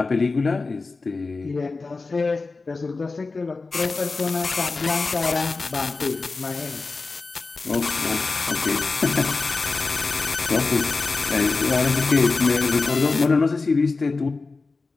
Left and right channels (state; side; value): quieter; right; 3.9 dB